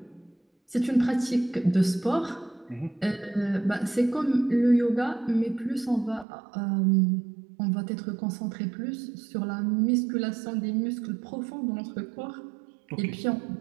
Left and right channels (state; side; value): drops out; left; at 6.2 s